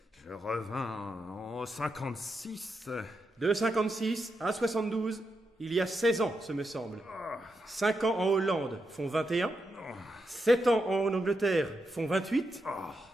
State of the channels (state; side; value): normal; both; correlation 0.84